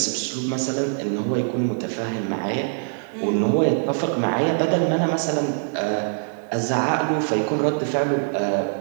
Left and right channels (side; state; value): left; silent; 63 dB below the other